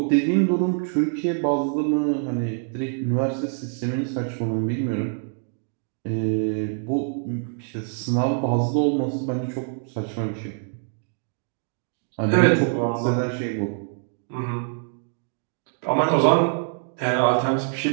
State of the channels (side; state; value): left; silent; 57 dB below the other